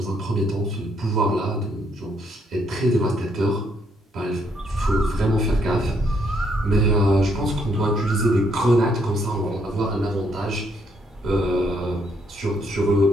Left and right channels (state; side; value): normal; both; correlation 0.72